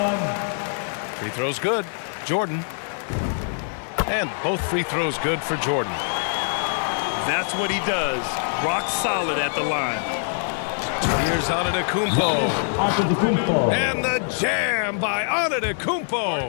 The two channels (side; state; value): right; silent; digital silence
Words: Free throws good. Jordan. And both free throws good for Jordan. That's what he does. Rock solid at the line. Here's Antetokounmpo. And the jam by